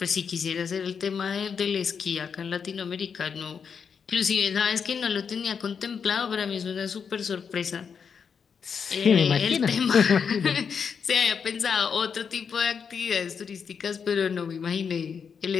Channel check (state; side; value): quieter; right; 6.5 dB